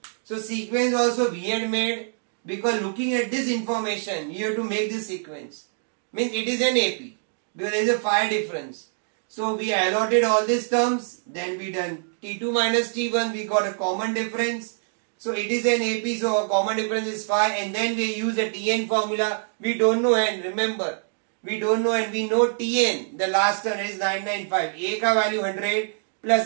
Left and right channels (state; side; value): silent; left; digital silence